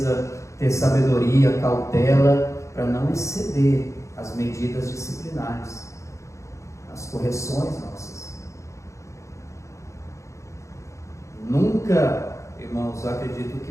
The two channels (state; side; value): late; right; 0.15 ms